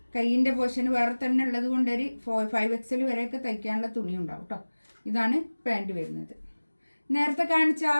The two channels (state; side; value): inverted; both; correlation -1.00